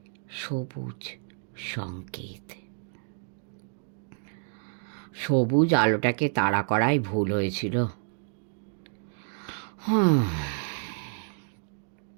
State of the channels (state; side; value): silent; left; digital silence